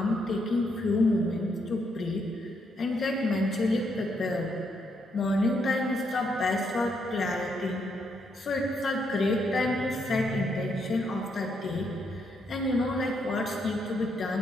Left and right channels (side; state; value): both; normal; correlation 0.76